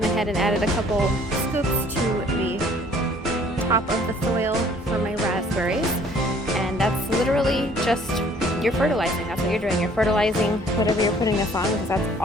ahead and added a couple scoops to the top of the soil for my raspberries, and that's literally just you're fertilizing. That's what you're doing. You're fertilizing whatever you're putting this on, because that's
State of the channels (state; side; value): normal; both; correlation 0.57